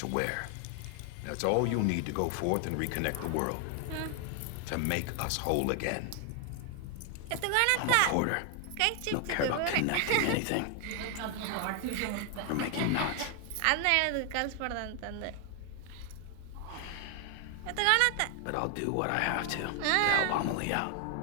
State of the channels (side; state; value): both; different; correlation 0.00